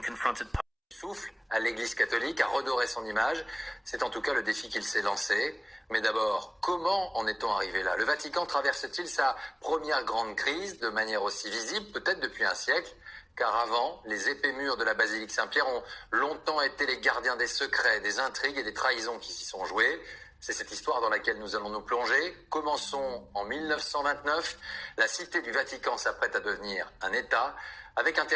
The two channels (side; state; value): both; identical; correlation 1.00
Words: confronted. Souffle à l'Église catholique, à redorer son image, c'est en tout cas le défi qu'il s'est lancé. Mais d'abord, comment en est-on arrivé là? Le Vatican traverse-t-il sa première grande crise de manière aussi visible, peut-être depuis un siècle? Car avant, les épais murs de la basilique Saint-Pierre ont longtemps été les gardiens des secrets, des intrigues et des trahisons qui s'y sont jouées. C'est cette histoire dans laquelle nous allons nous plonger. Commençons en 1929. La cité du Vatican s'apprête à devenir un État, avec un